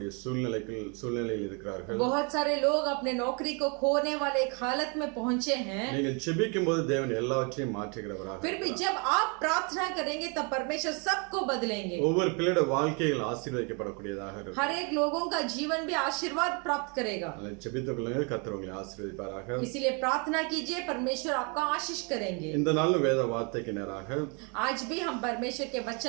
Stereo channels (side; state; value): left; quieter; 34.2 dB